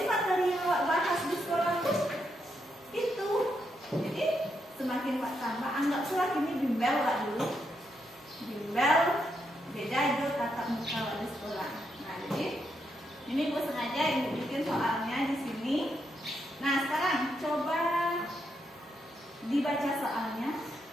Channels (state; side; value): normal; both; correlation 0.80